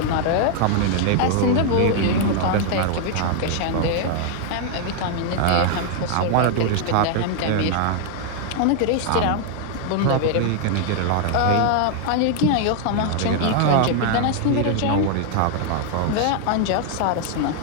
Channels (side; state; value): both; different; correlation 0.00